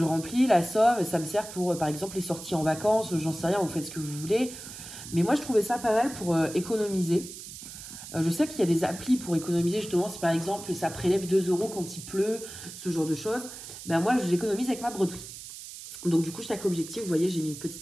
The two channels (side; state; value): right; noise; hiss, 12 dB below the sound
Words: remplis, la somme, ça me sert pour, par exemple, les sorties en vacances, j'en sais rien, vous faites ce que vous voulez. Mais moi, je trouvais ça pas mal pour économiser. Je sais qu'il y a des applis pour économiser, justement, si par exemple, ça prélève 2 € quand il pleut, ce genre de choses. Ben moi, j'économise avec ma broderie. Donc, du coup, chaque objectif, vous voyez, j'ai mis une